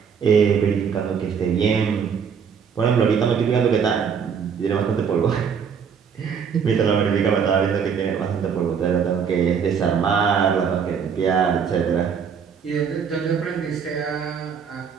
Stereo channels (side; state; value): left; quieter; 6.8 dB